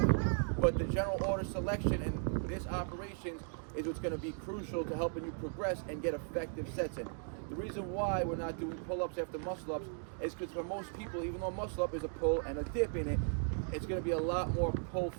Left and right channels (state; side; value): silent; left; 53 dB below the other